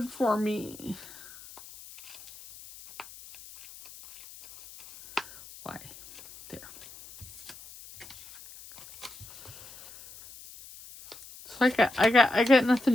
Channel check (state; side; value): noise; left; hiss, 18 dB below the sound